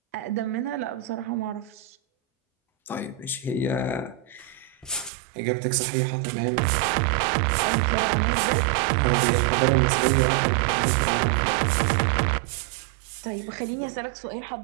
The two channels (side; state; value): left; drops out; at 5.1 s